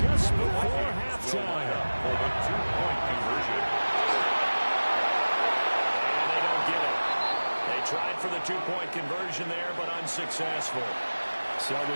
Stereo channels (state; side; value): inverted; both; correlation -1.00